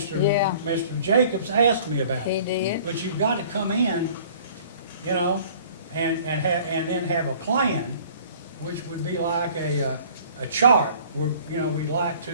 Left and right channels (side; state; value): both; inverted; correlation -0.51